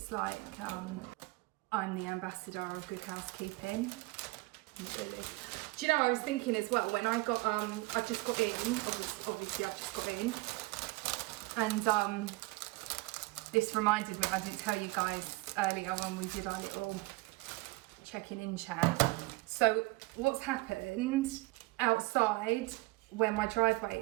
like I'm the ambassador of good housekeeping. Really. Do you know, I was thinking as well, when I got, I just got in, obviously I've just got in, and this reminded me, I didn't tell you guys earlier when we did our little checking in chat. So what's happened outside where my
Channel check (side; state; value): left; quieter; 23.0 dB